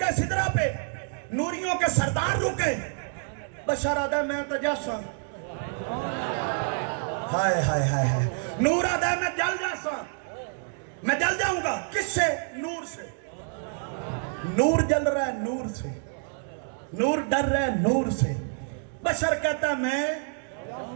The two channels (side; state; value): left; silent; 60 dB below the other